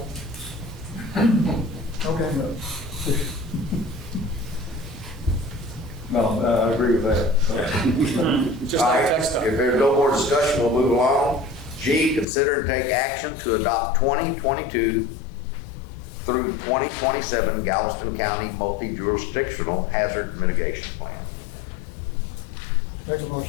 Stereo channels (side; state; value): right; drops out; at 12.2 s